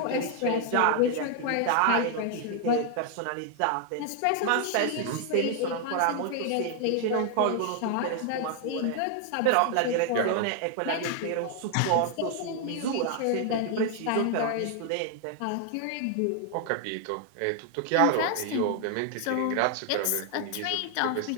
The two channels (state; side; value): different; both; correlation 0.00